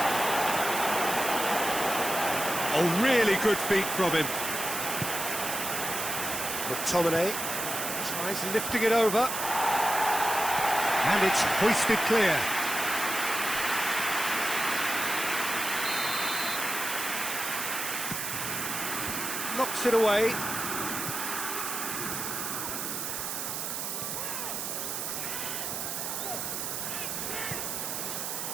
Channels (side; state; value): right; noise; hiss, 3 dB below the sound